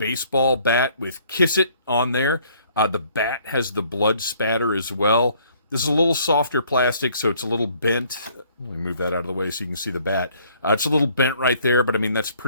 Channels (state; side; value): inverted; both; correlation -0.61